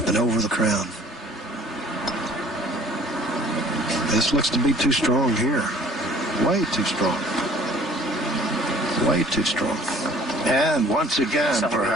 and over the crown. This looks to be too strong here. Way too strong. Way too strong. And once again,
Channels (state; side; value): normal; both; correlation 0.54